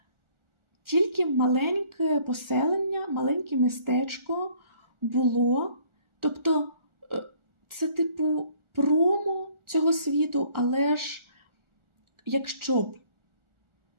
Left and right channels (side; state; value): left; late; 1.4 ms